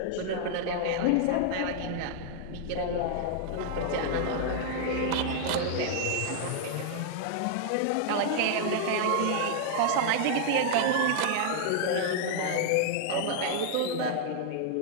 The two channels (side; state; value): both; different; correlation -0.01